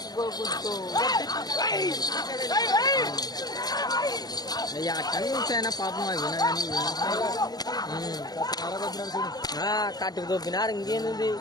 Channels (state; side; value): late; right; 0.19 ms